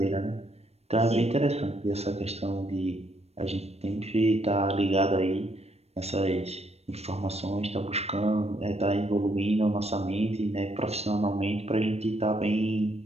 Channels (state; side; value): late; left; 0.31 ms